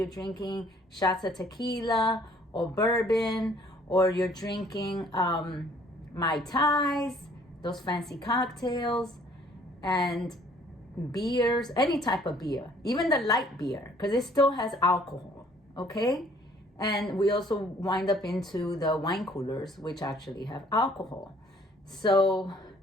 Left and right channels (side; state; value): both; normal; correlation 0.59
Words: drinking shots of tequila or bourbon, or you're drinking Mai Tais, those fancy cocktails, and beers, any type of beer, even the light beer, because it still has alcohol, okay? And we also wind up into the wine coolers, which actually have alcohol. So